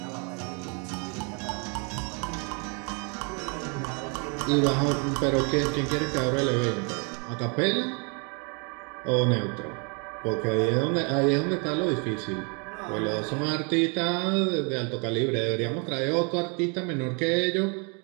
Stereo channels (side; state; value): left; quieter; 35.3 dB